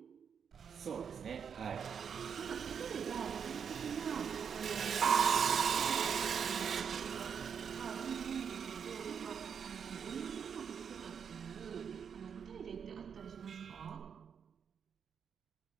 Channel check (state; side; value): quieter; left; 7.1 dB